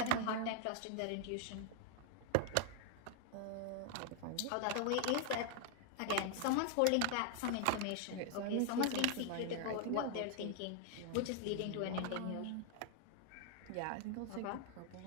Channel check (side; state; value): both; different; correlation 0.00